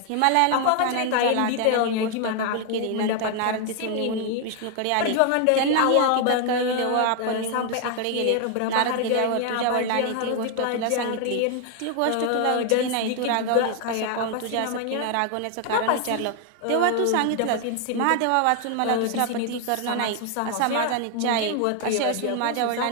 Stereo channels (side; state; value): both; different; correlation 0.00